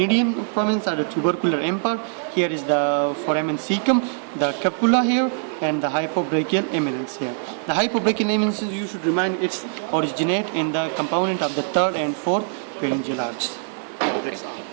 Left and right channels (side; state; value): left; silent; digital silence